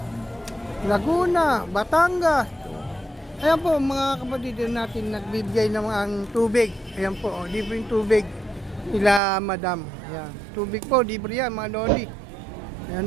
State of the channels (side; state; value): left; drops out; at 9.2 s